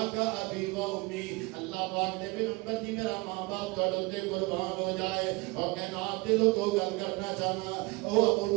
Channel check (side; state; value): left; quieter; 24.6 dB